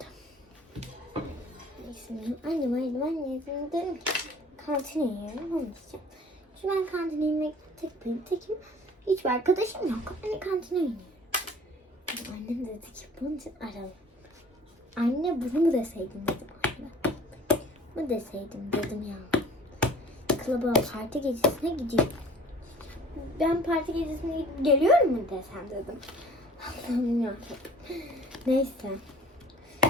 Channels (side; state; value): both; normal; correlation 0.48